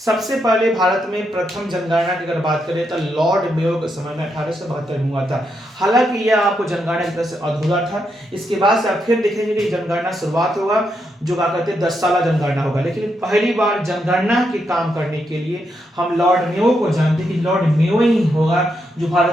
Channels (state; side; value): normal; both; correlation 0.81